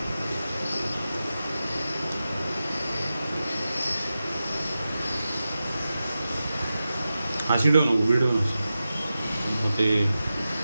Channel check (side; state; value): both; inverted; correlation -0.92